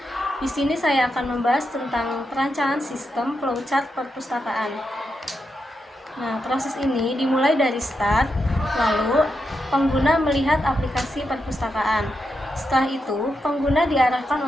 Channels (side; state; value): both; normal; correlation 0.85